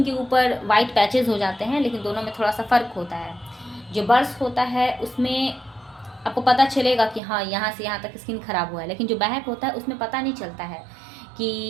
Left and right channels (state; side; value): drops out; left; at 7.2 s